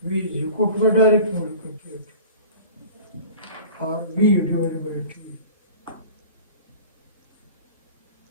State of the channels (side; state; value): both; inverted; correlation -0.41